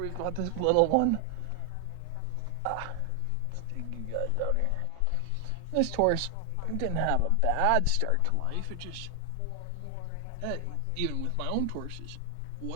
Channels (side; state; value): both; different; correlation 0.00